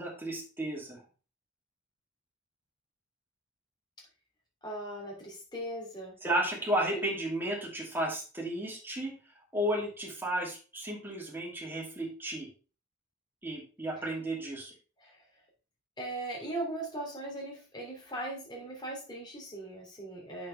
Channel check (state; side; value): normal; both; correlation 0.37